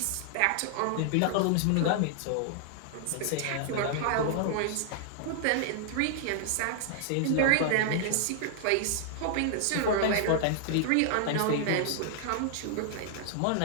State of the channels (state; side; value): different; both; correlation -0.01